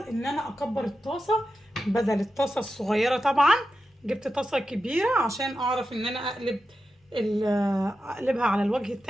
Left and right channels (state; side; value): normal; both; correlation 0.90